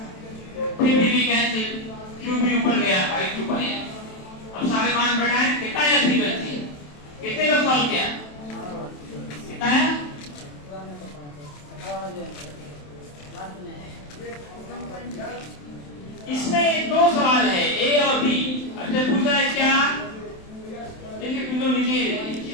फिर भी कैंसिल, qb ऊपर गया by 2 पाई। अब सारे मान बढ़ाएं, कितना है 3 बची, कितने लोग सॉल्व किया, कितना है? इसमें दो सवाल है, ए और बी। अच्छा पूछा है क्या, देखिए बिल्कुल नीचे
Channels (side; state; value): right; late; 27 ms